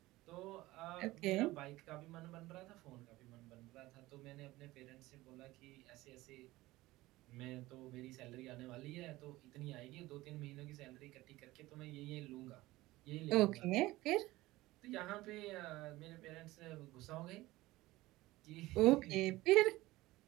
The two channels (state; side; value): quieter; left; 18.5 dB